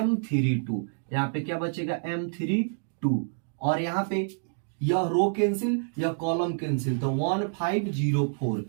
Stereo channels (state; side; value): silent; left; digital silence